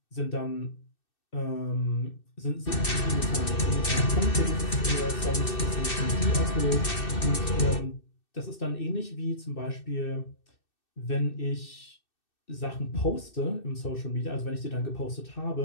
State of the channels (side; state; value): right; late; 2.6 ms